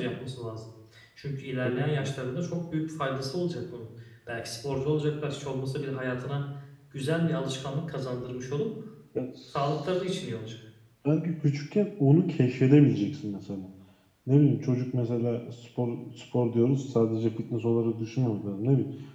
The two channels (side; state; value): both; identical; correlation 1.00